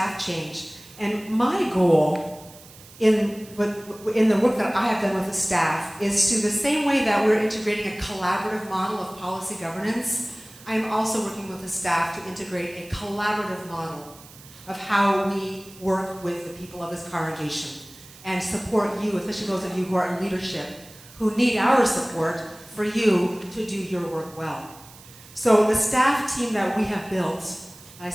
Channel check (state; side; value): noise; right; hiss, 21 dB below the sound